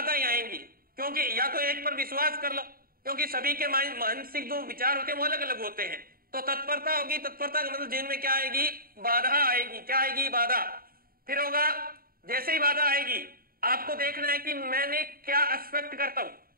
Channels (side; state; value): left; late; 0.43 ms